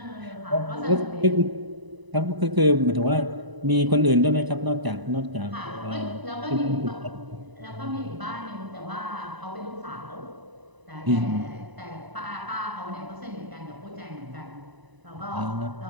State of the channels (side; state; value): left; late; 1.0 ms